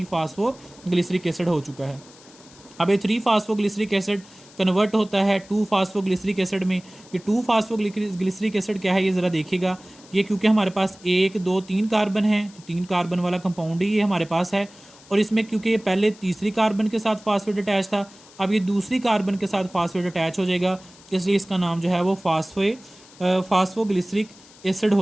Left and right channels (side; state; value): left; noise; hiss, 24 dB below the sound